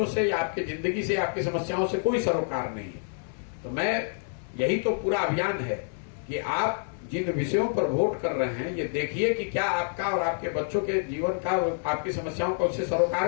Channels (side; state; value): right; silent; digital silence